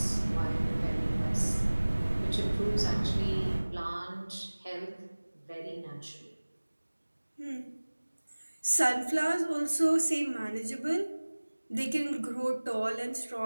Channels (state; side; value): inverted; both; correlation -1.00